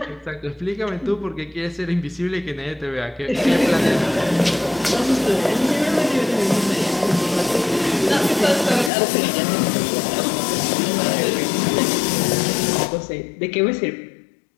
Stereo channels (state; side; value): drops out; right; at 8.9 s